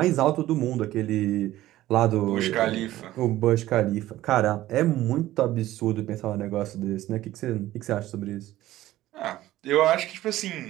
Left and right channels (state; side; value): quieter; left; 15.2 dB